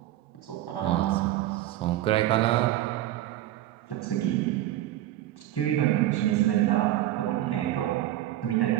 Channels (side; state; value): left; quieter; 13.9 dB